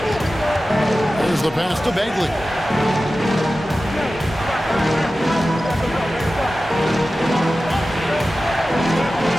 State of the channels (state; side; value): normal; both; correlation 0.95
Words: There's the pass to Bagley.